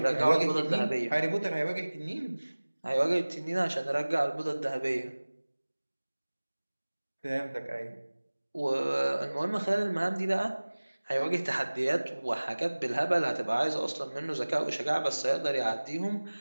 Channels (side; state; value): both; inverted; correlation -1.00